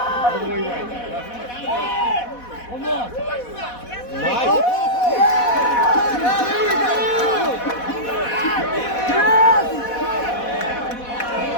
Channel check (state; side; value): late; right; 4.1 ms